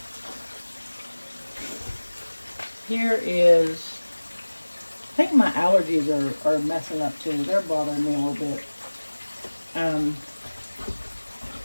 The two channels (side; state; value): both; inverted; correlation -1.00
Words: Here is, I think my allergies are messing up too. They're bothering me a little bit.